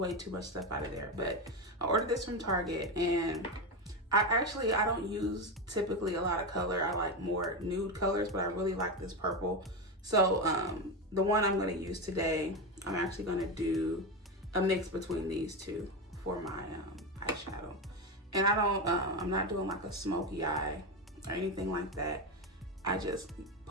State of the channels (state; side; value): normal; both; correlation 0.15